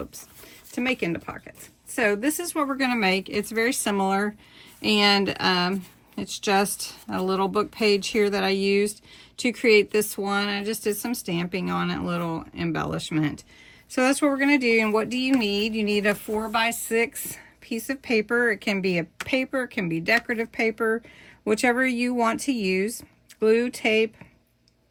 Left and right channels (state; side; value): identical; both; correlation 1.00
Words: to make into pockets. So this is what we're going to make. It's very similar, and it's just a little book page here that I used to create this one. I just did some stamping on it, a little embellishment. So that's what we're going to do. And what do you need? You need a 4x6 piece of paper. It can be a paper, it can be decorative paper, whichever you want to use. Glue, tape,